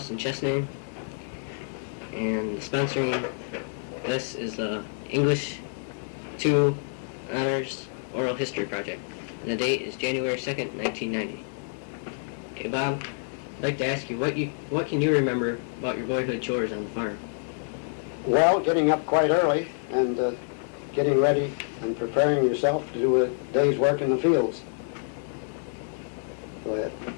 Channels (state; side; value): silent; right; digital silence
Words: in Chesname, and sponsoring this is the English 2 Honors Oral History Project. And the date is January 2nd, 1990. Okay, Bob, I'd like to ask you, what can you remember about your boyhood chores on the farm? Well, getting up quite early and getting ready and preparing yourself to do a day's work in the fields. Go ahead.